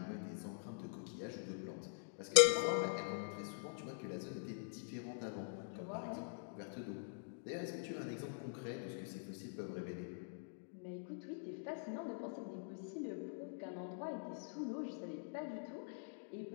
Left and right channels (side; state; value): right; silent; digital silence